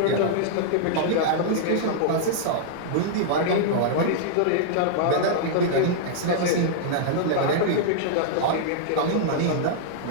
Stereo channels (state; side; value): different; both; correlation -0.02